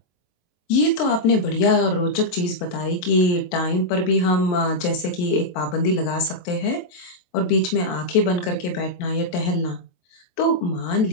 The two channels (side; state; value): right; late; 23 ms